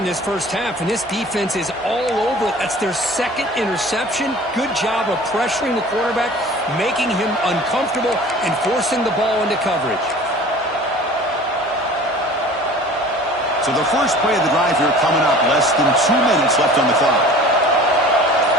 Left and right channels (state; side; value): normal; both; correlation 0.44